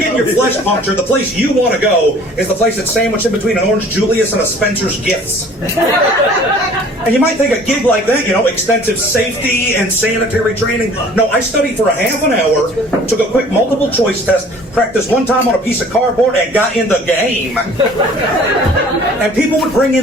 your flesh punctured, the place you want to go is the place that's sandwiched in between an Orange Julius and a Spencer's Gifts. And you might think a gig like that, you know, extensive safety and sanitary training. No, I studied for a half an hour, took a quick multiple choice test, practiced one time on a piece of cardboard, and got in the game. And people would bring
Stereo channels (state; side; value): normal; both; correlation 0.51